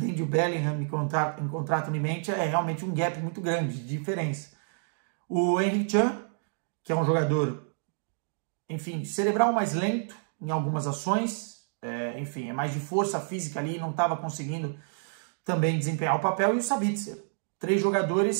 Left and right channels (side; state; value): left; silent; digital silence